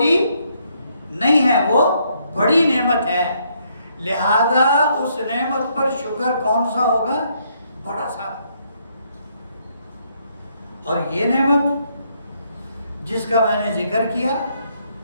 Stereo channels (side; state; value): both; inverted; correlation -0.72